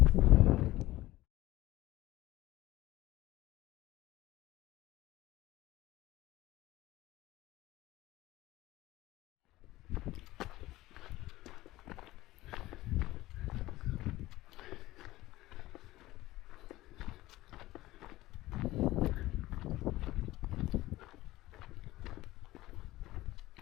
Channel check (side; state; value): right; quieter; 17.2 dB